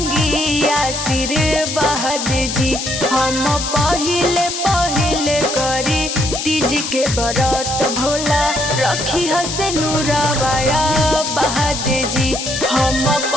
आशीर्वाद जी। हम पहिले पहिले करी तीज के बरत भोला रखी हसे नूराबाया बहाद जी। हम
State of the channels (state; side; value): noise; left; hiss, 4 dB below the sound